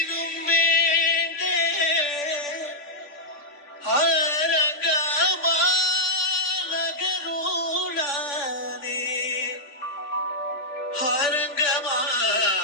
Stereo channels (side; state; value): right; late; 3.5 ms